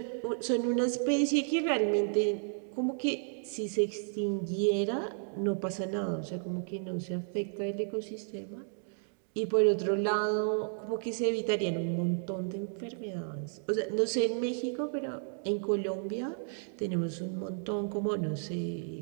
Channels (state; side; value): silent; left; digital silence